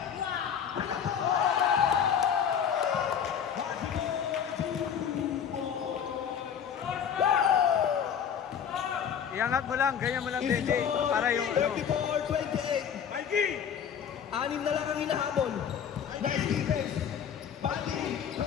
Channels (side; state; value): right; quieter; 8.1 dB